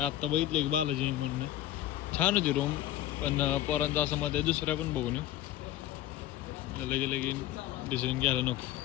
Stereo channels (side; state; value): right; quieter; 13.2 dB